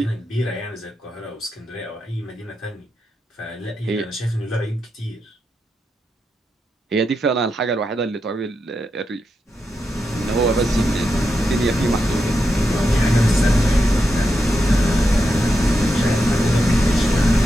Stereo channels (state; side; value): normal; both; correlation 0.86